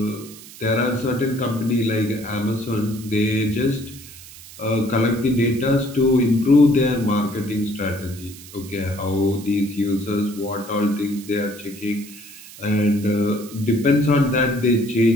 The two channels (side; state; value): right; noise; hiss, 17 dB below the sound